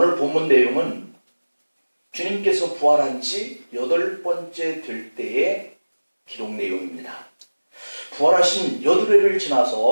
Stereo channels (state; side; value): inverted; both; correlation -1.00